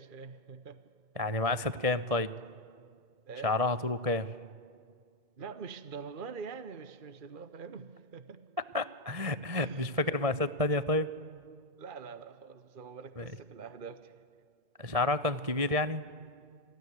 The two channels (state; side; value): late; left; 1.7 ms